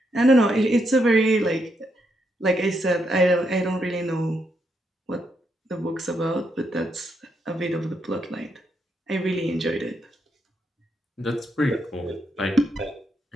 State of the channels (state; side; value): normal; both; correlation 0.79